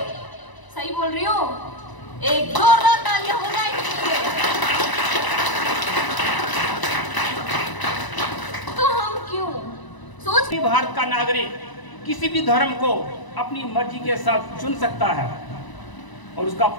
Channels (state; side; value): late; right; 1.0 ms